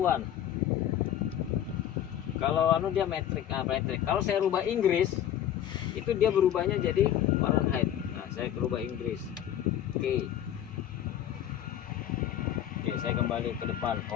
Kalau anu dia metrik, metrik. Kalau saya rubah Inggris, itu dia berubahnya jadi Fahrenheit. Nah, saya rubah Inggris. Oke. Oke, saya kembali ke depan,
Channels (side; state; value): right; quieter; 10.7 dB